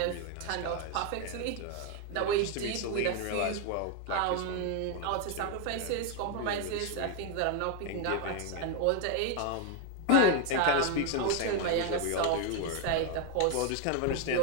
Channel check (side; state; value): both; different; correlation 0.01